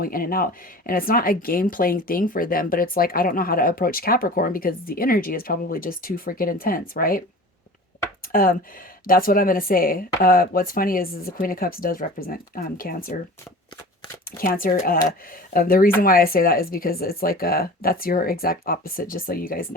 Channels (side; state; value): both; normal; correlation 0.39